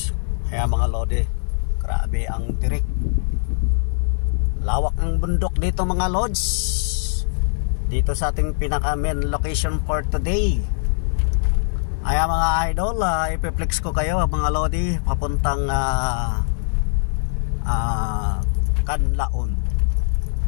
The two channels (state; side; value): silent; right; 56 dB below the other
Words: Kaya mga lodi, grabe ang tirik. Lawak ng bundok dito mga lods. Dito sa ating pinaka main location for today. Ay mga idol, ipiplex ko kayo mga lodi papuntang Canlaon.